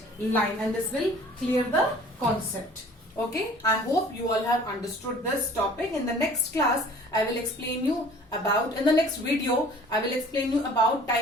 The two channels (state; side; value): normal; both; correlation 0.49